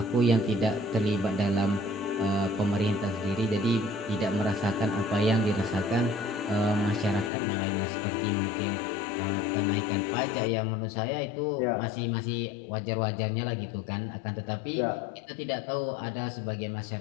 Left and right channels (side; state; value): right; drops out; at 7.3 s